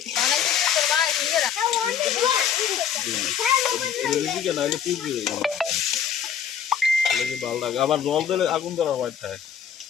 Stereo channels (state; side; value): quieter; right; 8.3 dB